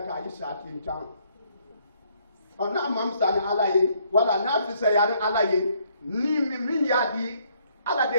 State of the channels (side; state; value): both; inverted; correlation -0.68